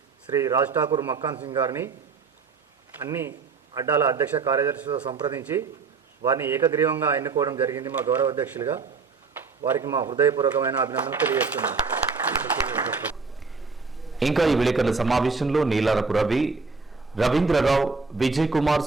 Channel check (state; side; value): quieter; left; 4.7 dB